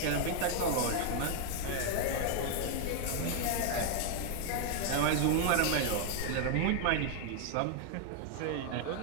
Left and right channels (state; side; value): different; both; correlation 0.00